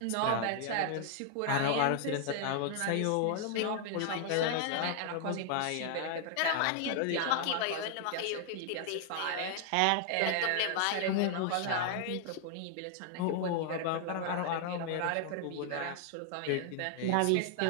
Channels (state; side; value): different; both; correlation 0.00